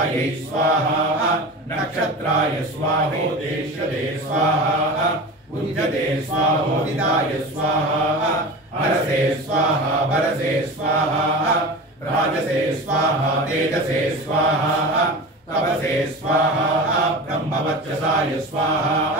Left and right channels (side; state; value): both; normal; correlation 0.31